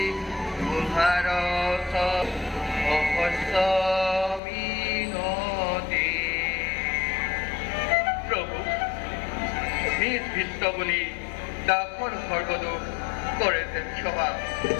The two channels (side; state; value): right; drops out; at 4.4 s